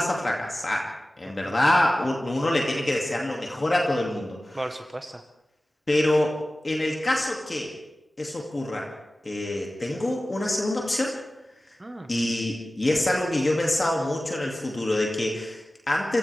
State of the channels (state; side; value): normal; both; correlation 0.96